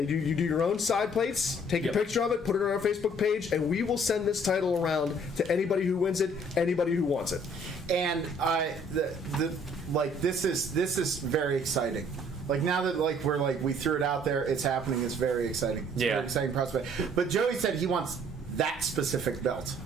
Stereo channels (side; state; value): both; normal; correlation 0.59